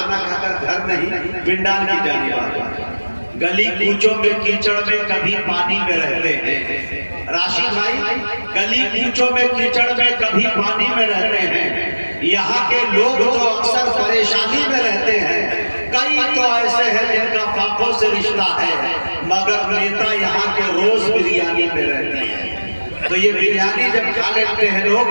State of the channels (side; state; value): both; inverted; correlation -1.00